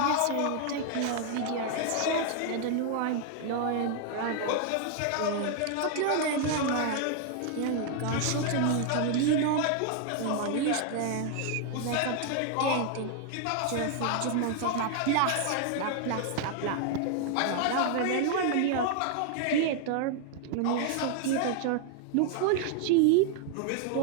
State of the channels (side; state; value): both; different; correlation 0.00